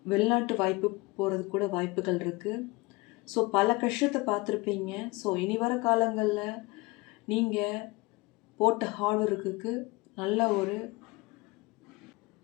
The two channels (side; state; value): right; quieter; 23.8 dB